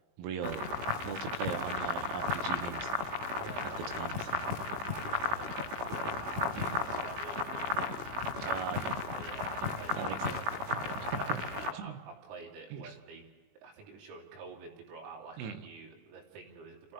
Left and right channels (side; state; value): left; late; 19 ms